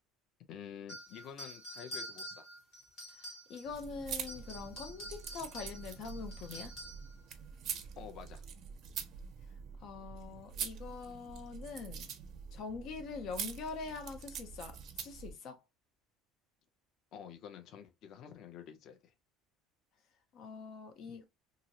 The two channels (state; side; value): normal; both; correlation 0.38